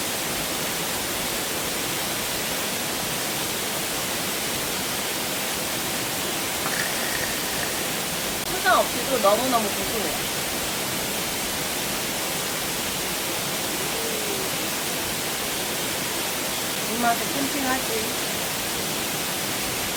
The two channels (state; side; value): identical; both; correlation 1.00